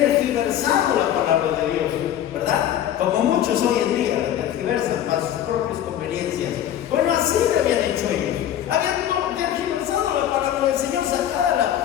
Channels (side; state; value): right; quieter; 11.1 dB